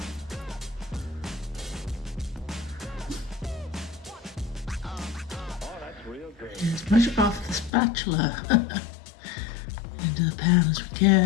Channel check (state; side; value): drops out; right; at 7.7 s